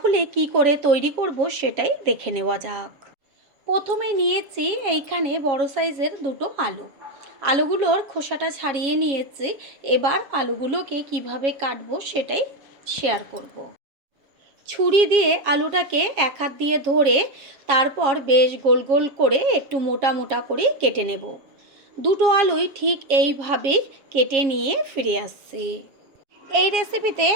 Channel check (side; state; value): left; late; 7.3 ms